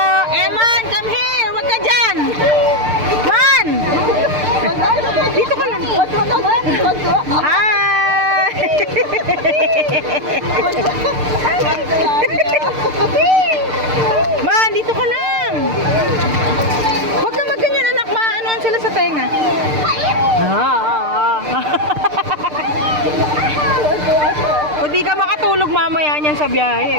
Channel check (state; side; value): late; left; 6.6 ms